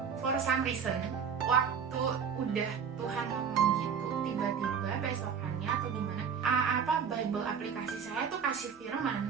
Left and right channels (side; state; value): left; quieter; 6.9 dB